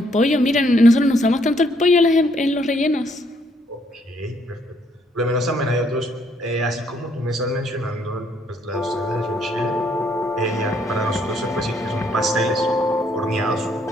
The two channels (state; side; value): normal; both; correlation 0.69